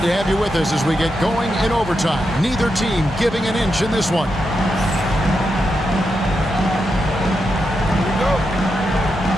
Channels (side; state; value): both; normal; correlation 0.86